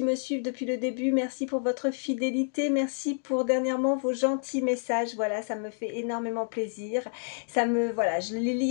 me suivent depuis le début, merci pour votre fidélité, merci pour dernièrement vos gentils messages. Voilà, ça me fait énormément plaisir. Voilà, je les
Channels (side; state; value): right; silent; digital silence